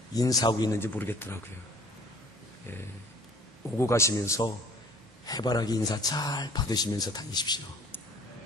인사하고 있는지 모르겠더라고요. 오고 가시면서 해바라기 인사 잘 받으시면서 다니십시오.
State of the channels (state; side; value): normal; both; correlation 0.52